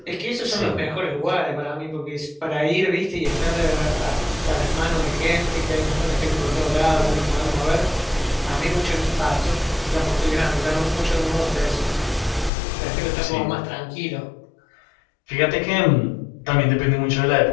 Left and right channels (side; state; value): right; drops out; at 12.5 s